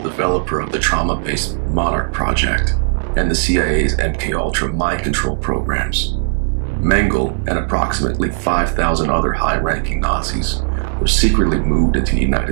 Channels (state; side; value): silent; left; 59 dB below the other